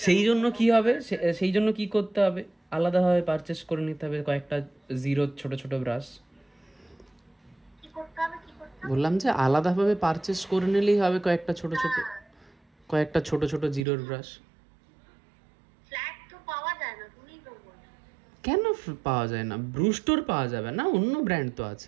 সেই জন্য কি হবে, সেই জন্য কি করতে হবে, আলাদাভাবে পারচেস করে নিতে হবে কয়েকটা জিরো ছোট ছোট ব্রাশ। কি করতে হবে, কি করতে হবে? বললাম যে আলাদাভাবে পারচেস করে নিলেই হবে কয়েকটা ছোট ছোট জিরোর ব্রাশ। ফ্ল্যাট তো পাওয়া যায় না, তুমি তো বলো। কেন পাওয়া যায় না? ব্রুস্টোর পাওয়া যাবে না, অন্য ব্র্যান্ড তো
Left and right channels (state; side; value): drops out; left; at 13.8 s